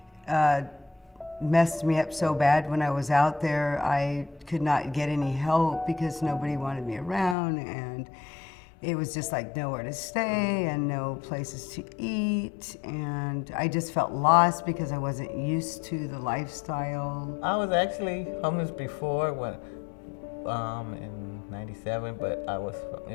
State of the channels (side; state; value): right; drops out; at 7.4 s